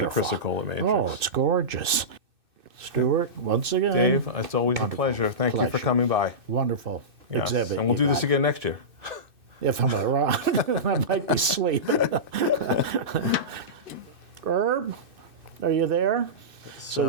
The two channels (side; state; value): left; late; 2.6 ms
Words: Yeah, the Chrysocolla matrix. Oh, it's gorgeous. Stuart, once again. Dave, it's always a pleasure. Thank you for coming by. Wonderful Yes. exhibit. And we'll do this again next year. If I'm around, I might be sleeping. Herb, are you there?